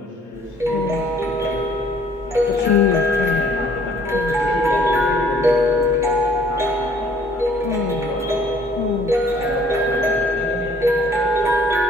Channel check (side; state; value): both; normal; correlation 0.59